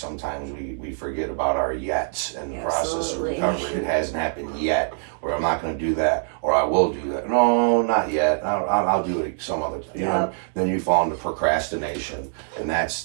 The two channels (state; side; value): silent; left; digital silence